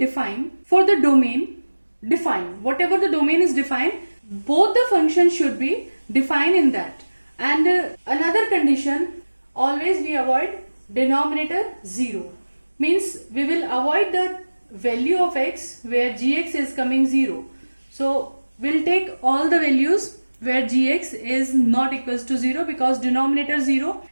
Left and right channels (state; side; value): inverted; both; correlation -1.00